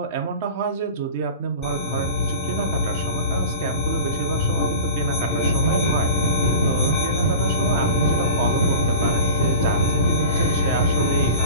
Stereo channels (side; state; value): both; inverted; correlation -0.36